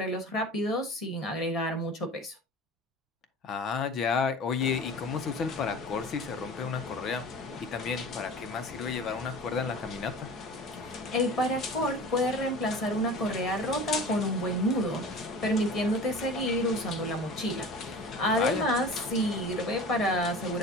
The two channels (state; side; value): normal; both; correlation 0.38